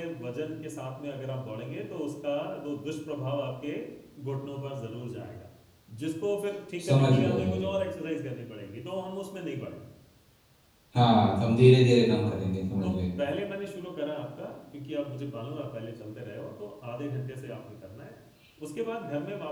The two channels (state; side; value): identical; both; correlation 1.00